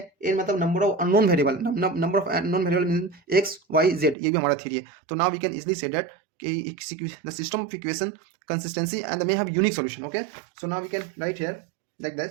एन मतलब number of unknown variable, number of unknown variable means x y z, ये भी हमारा 3 है। तो now we can easily say that the system of equation consistency and they may have unique solution। okay, so now we can write here like that,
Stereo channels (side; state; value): left; drops out; at 4.2 s